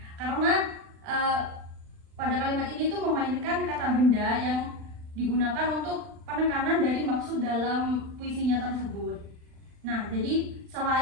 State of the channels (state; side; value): late; left; 39 ms